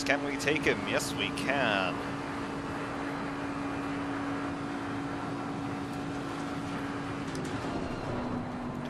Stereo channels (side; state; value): both; identical; correlation 1.00